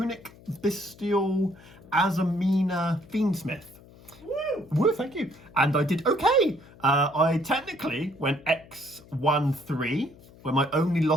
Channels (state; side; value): noise; left; hum, 23 dB below the sound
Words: Bystial, Azamina, Fiend Smith. Woo, thank you. And I did okay. I technically went X-1-3, where my only